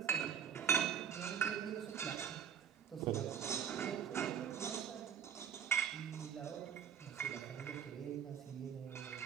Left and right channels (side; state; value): left; quieter; 8.0 dB